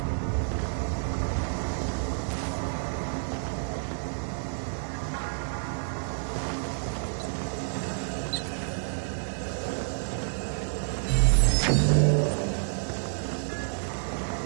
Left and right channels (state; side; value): silent; left; 59 dB below the other